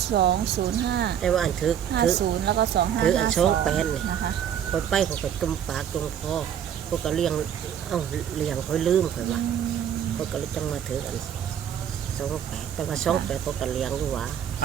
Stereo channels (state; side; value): quieter; left; 9.3 dB